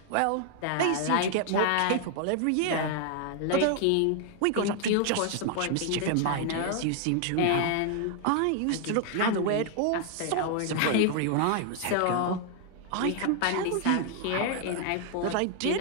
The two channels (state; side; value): different; both; correlation 0.00